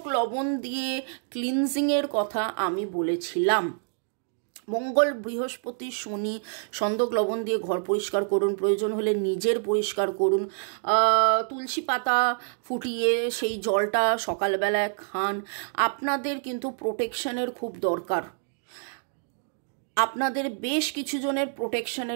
লবণ দিয়ে ক্লিনজিংয়ের কথা আমি বলেছিলাম। মঙ্গল, বৃহস্পতি, শনি, সন্দক লবণ দিয়ে ঘর পরিষ্কার করুন, প্রয়োজন হলে নিজের পরিষ্কার করুন। তুলসী পাতা ফুটিয়ে সেই জলটা সকালবেলায় খান। আপনাদের কিন্তু প্রোটেকশনের খুব দরকার, আপনাদের বেশ কিছু জনের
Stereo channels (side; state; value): left; silent; digital silence